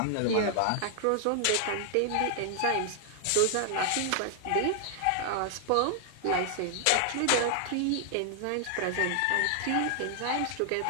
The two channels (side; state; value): both; different; correlation 0.00